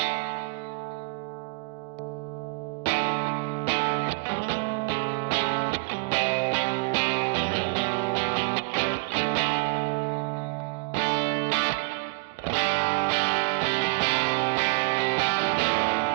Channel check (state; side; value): quieter; left; 33.5 dB